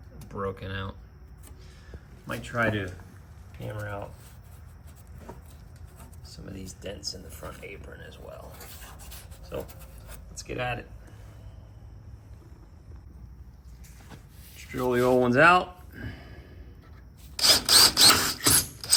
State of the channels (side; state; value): both; identical; correlation 1.00